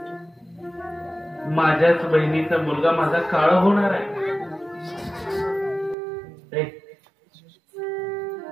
माझ्याच बहिणीचा मुलगा माझा काळ होणार आहे.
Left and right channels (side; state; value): left; drops out; at 6.0 s